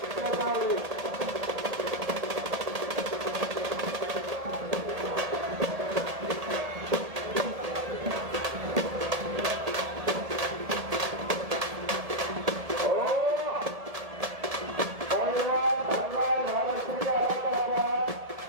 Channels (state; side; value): late; left; 1.7 ms